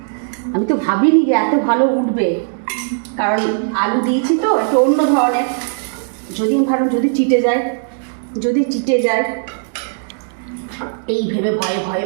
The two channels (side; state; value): left; silent; 68 dB below the other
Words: আমি তো ভাবিনি যে এত ভালো উঠবে, কারণ আলু দিয়েছি তো একটু অন্য ধরনের। যদি আমি ভাবলাম যদি চিটে যায়, এই ভেবে ভয়ে ভয়ে